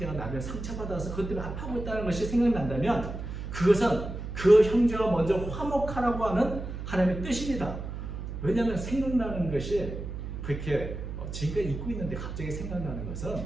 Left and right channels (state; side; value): noise; right; hum, 7 dB below the sound